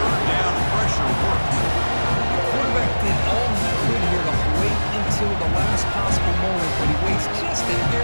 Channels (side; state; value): both; inverted; correlation -1.00